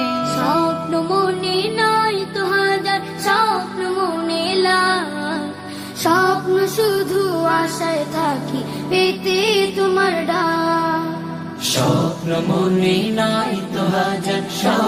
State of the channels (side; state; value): both; identical; correlation 1.00